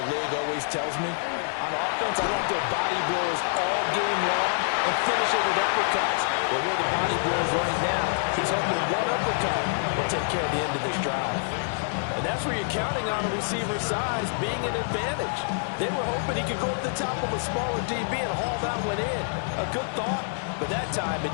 league always tells me, on offense, I want their body blows all game long and finish it with uppercuts. Well, here are the body blows right now. He's hoping that one uppercut will take care of the end of this drive. And that's where you're counting on a receiver's size being an advantage. They were hoping he could go up the top of a smaller DB and haul that one in. A good thought, but that time it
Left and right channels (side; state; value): right; silent; digital silence